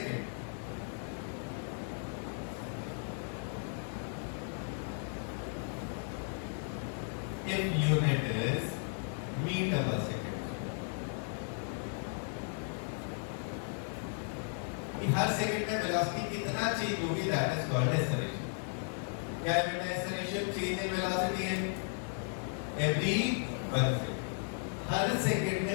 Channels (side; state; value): right; silent; 54 dB below the other